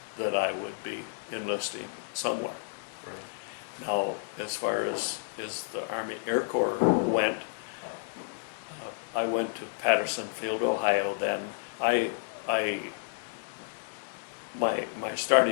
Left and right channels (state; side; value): silent; right; digital silence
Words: that I would be enlisting somewhere. Right. Now, as far as the Army Air Corps went, I went to Patterson Field, Ohio. Then my